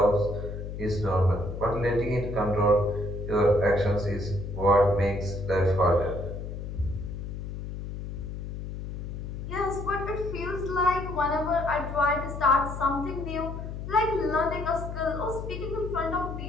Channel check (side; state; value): left; noise; hum, 7 dB below the sound